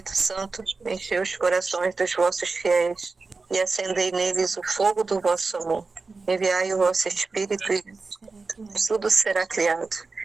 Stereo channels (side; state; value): left; quieter; 4.0 dB